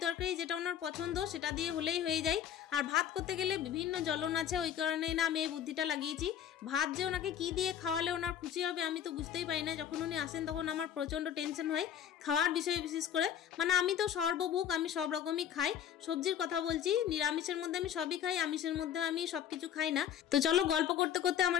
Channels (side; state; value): right; quieter; 9.5 dB